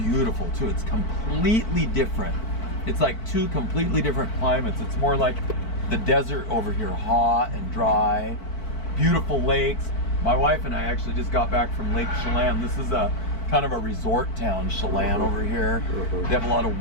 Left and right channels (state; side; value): late; right; 4.5 ms